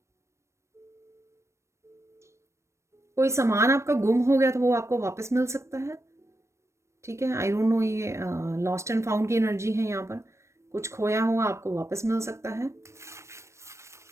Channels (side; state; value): left; late; 0.13 ms